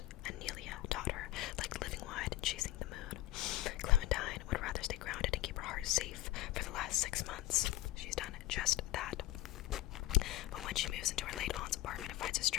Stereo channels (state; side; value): quieter; right; 16.3 dB